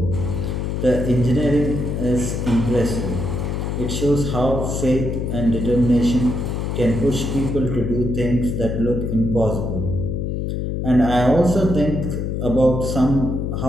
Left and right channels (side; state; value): left; noise; hum, 2 dB below the sound